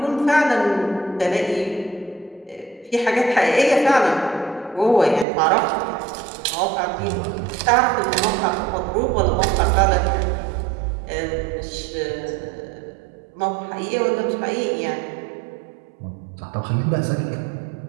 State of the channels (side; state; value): left; drops out; at 5.2 s